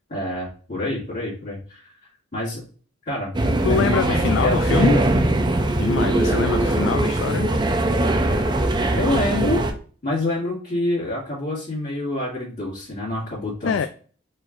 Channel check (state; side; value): normal; both; correlation 0.58